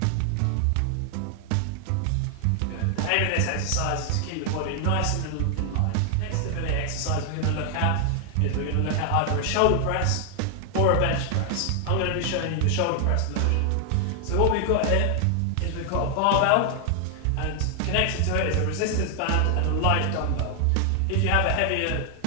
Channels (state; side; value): different; both; correlation 0.00